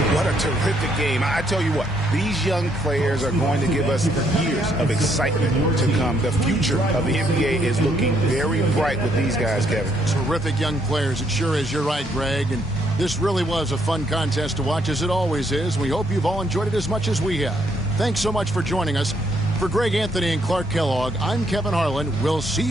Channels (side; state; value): both; normal; correlation 0.72